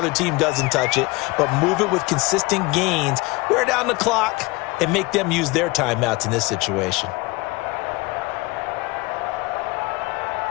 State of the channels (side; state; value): right; quieter; 23.5 dB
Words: team doesn't touch it, but move it with consistent gains. Wear down the clock and make them use their timeouts in this situation.